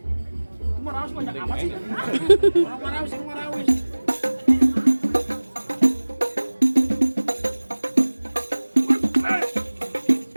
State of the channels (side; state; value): both; inverted; correlation -1.00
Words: Itu Marawis banyak amat sih. Orang Marawis yang Marawis.